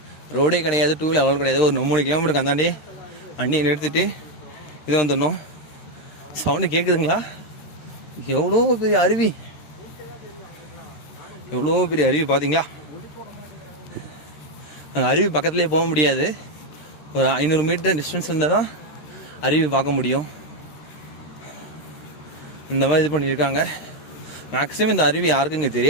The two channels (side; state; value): right; late; 13 ms